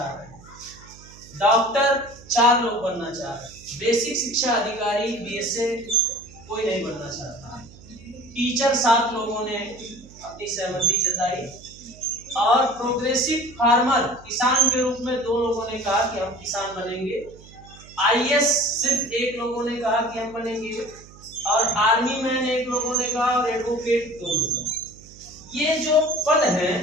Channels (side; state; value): right; noise; hum, 21 dB below the sound